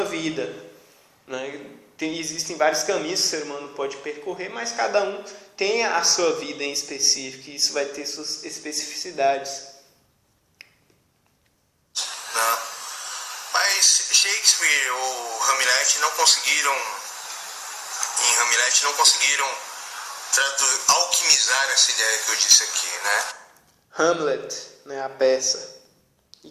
vida, né? Existem vários caminhos que o ser humano pode percorrer, mas cada um tem a sua vida em específico, e isso vai ter suas especificidades. Não. Mas Shakespeare ou Hamlet não conseguiram alquimizar essa ideia que eu disse aqui, né? Hamlet, né, a peça, e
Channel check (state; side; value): identical; both; correlation 1.00